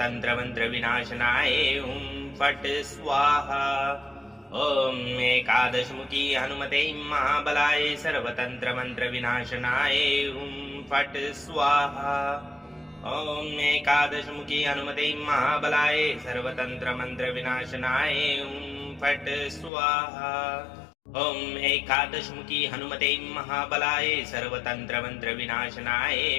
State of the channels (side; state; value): right; drops out; at 19.7 s